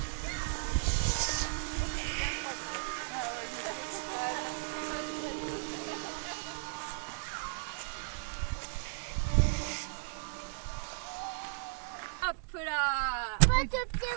Hop là. Pas de pied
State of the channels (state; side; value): silent; left; digital silence